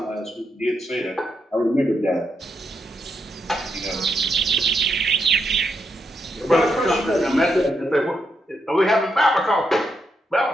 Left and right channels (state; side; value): normal; both; correlation 0.81